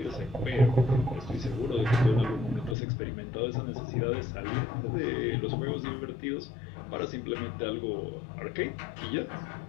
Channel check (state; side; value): drops out; right; at 2.8 s